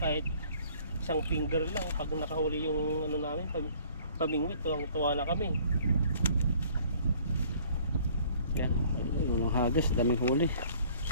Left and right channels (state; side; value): inverted; both; correlation -0.55